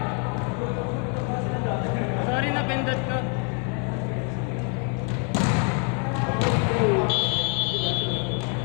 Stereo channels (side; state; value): right; quieter; 39.3 dB